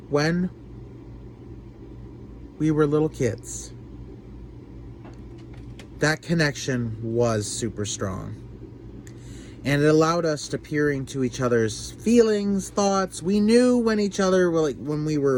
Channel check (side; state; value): both; identical; correlation 1.00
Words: when we were little kids, that connection was super strong. And it allowed us to peer into each other's feelings, thoughts. We knew when each other were